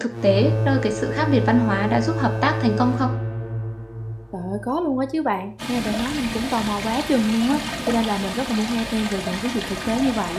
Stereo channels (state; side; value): identical; both; correlation 1.00